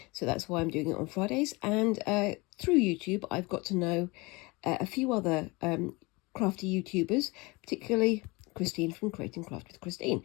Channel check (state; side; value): quieter; right; 25.0 dB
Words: So that's why I'm doing it on Fridays. And through YouTube, I've got to know a few other crafty YouTubers, particularly Christine from Create and Craft with Christine.